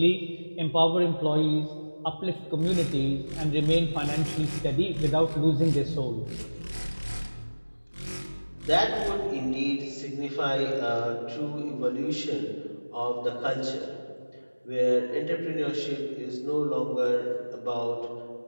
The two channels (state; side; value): inverted; both; correlation -1.00